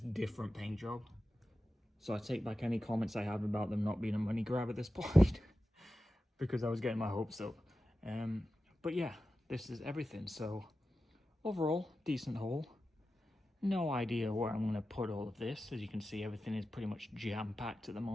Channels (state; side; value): normal; both; correlation 0.93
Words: different paint job. So I take back any comments I have about them not being a money grab at this point, because I was getting my hopes up. But yeah, this is everything. So overall, decent haul. No idea where I'm going to put all of this. As you can see, everything is pretty much jam-packed at the